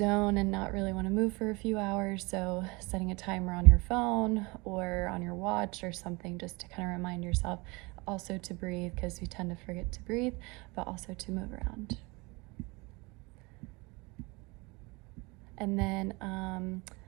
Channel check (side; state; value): left; quieter; 25.9 dB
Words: and not really want to move for a few hours. So setting a timer on your phone or on your watch or something, just to kind of remind yourself also to breathe, because we tend to forget to breathe, but also to move around. And then